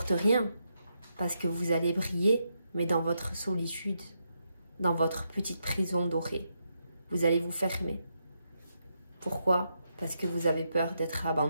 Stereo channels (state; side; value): inverted; both; correlation -0.81